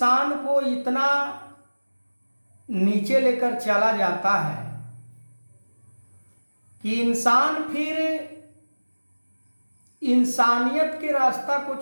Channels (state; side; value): inverted; both; correlation -1.00